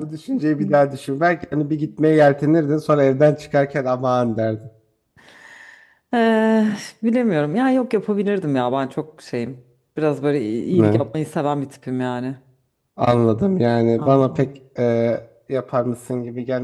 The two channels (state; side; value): identical; both; correlation 1.00